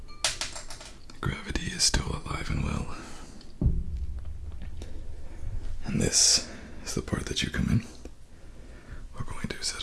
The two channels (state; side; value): identical; both; correlation 1.00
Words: gravity is still alive and well. And this is the part that you come in. We're going to